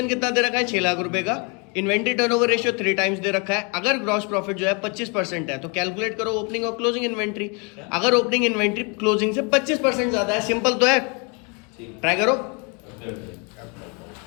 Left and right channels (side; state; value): right; quieter; 33.0 dB